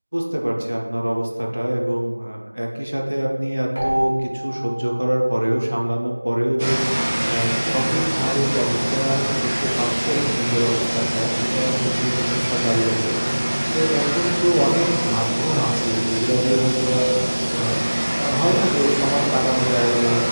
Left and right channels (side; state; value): both; inverted; correlation -1.00